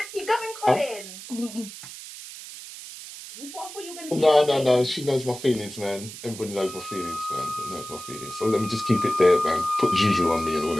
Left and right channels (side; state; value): right; noise; hiss, 13 dB below the sound